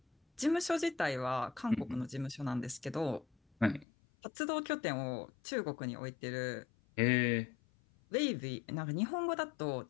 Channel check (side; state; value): right; drops out; at 3.9 s